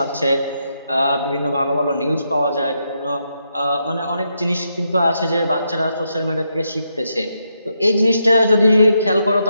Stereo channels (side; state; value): both; inverted; correlation -0.81